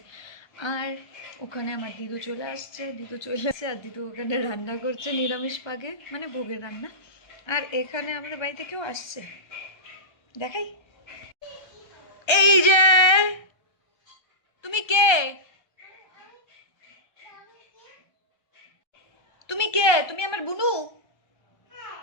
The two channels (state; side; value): late; right; 1.3 ms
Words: আর ওখানে আমার দিদু চলে আসছে, আর দিদু ওখানে রান্না করছে নিরামিষ পাগে, মানে ভোগের রান্না। আর এখানে আমাদের বাড়িতে কেউ আসছে, দেখাই। এই যে তুমি কে? তুমি কে? তুমি আমার বুনু?